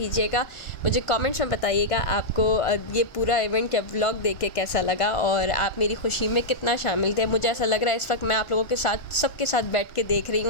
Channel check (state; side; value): late; right; 1.5 ms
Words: मुझे कमेंट्स में बताइएगा आपको ये पूरा इवेंट या व्लॉग देख के कैसा लगा और आप मेरी खुशी में कितना शामिल थे। मुझे ऐसा लग रहा है इस वक्त मैं आप लोगों के साथ सबके साथ बैठ के देख रही